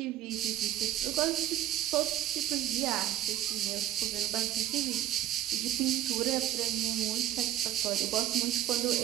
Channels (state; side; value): quieter; left; 12.6 dB